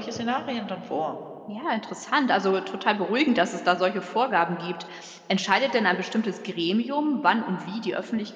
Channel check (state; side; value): identical; both; correlation 1.00